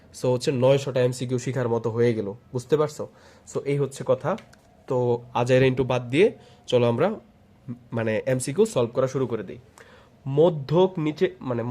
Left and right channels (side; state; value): both; identical; correlation 1.00